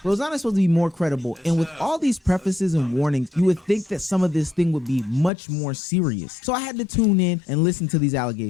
Rosanna's supposed to be more credible. And with all these prefaces and warnings, you would think that some of this thing would be much more serious. So I had to tune in and listen to these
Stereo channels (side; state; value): right; drops out; at 5.3 s